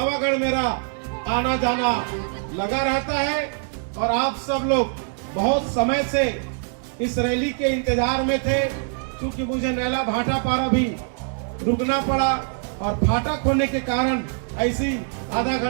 मेरा आना जाना लगा रहता है और आप सब लोग बहुत समय से इस रैली के इंतजार में थे। क्योंकि मुझे नैला भाटा पारा भी रुकना पड़ा और फाटक होने के कारण ऐसी आधा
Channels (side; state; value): left; silent; 62 dB below the other